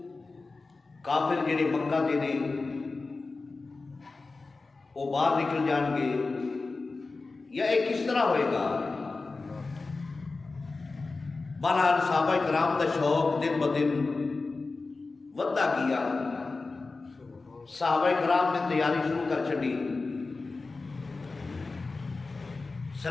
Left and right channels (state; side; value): quieter; right; 3.8 dB